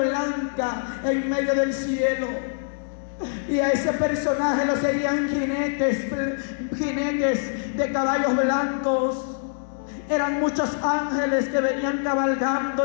en medio del cielo, y a ese personaje lo seguían jinetes de caballos blancos. Eran muchos ángeles que venían cabalgando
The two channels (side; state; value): right; silent; digital silence